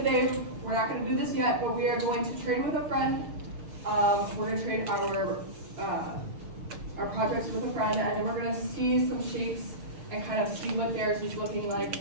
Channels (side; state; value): left; late; 6.6 ms